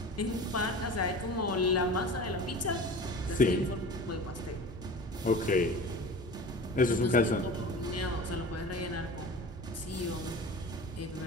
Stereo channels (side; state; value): both; normal; correlation 0.36